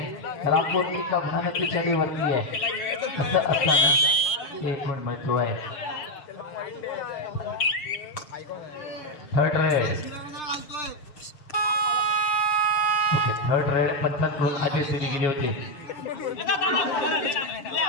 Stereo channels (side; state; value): right; late; 6.8 ms